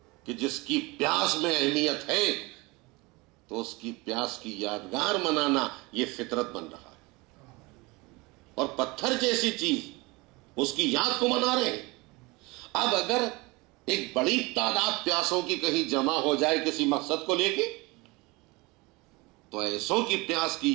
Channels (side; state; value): left; quieter; 24.5 dB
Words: کہ جس کی پیاس میں اہمیت ہے، تو اس کی پیاس کی یادگار منانا یہ فطرت بن رہا ہے۔ اور پتھر جیسی چیز اس کی یاد کو منا رہے ہیں۔ اب اگر ایک بڑی تعداد پیاسوں کی کہیں جمع ہو جائے کسی مقصد کو لے کے، تو ایسوں کی پیاس